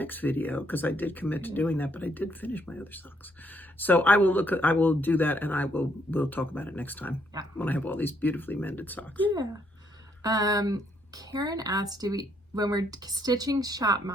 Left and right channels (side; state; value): both; normal; correlation 0.71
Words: video, because I did commit to doing that, but I did finish my other socks. So I will do that, and we'll talk about it next time when I have all these beautifully mended socks. Yeah. Karen asked, when we're stitching shop